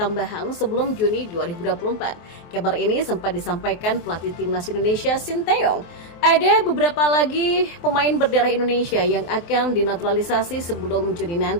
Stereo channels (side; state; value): right; late; 23 ms